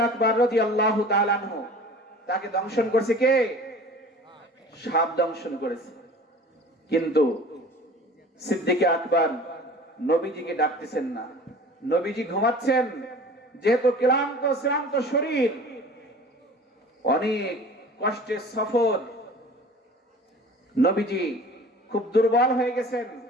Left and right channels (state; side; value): normal; both; correlation 0.43